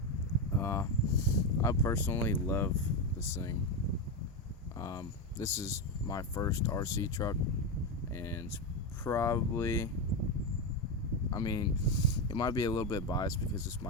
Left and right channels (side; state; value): both; normal; correlation 0.10